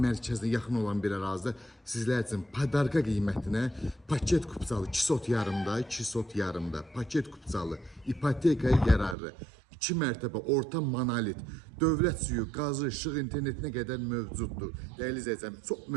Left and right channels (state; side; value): drops out; left; at 9.2 s